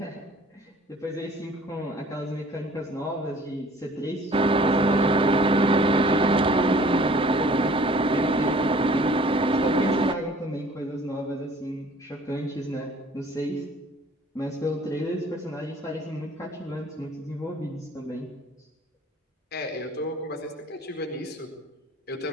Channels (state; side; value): normal; both; correlation 0.52